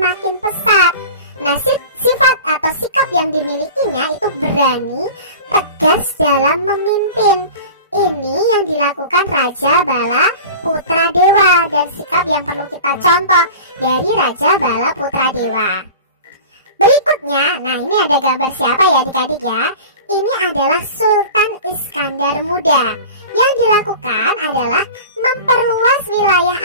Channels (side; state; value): both; inverted; correlation -0.37